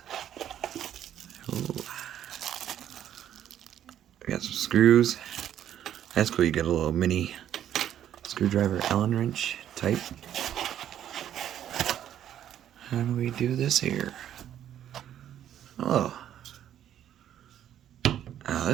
Ooh. I got some screws. That's cool, you get a little mini screwdriver Allen wrench type. How do we do this here? Oh. Oh,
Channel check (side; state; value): left; quieter; 10.7 dB